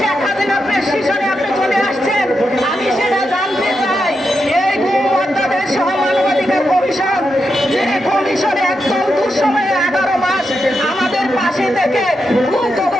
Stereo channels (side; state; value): both; normal; correlation 0.86